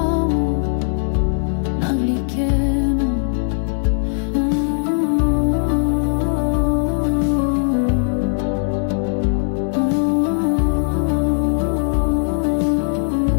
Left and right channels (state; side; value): silent; right; digital silence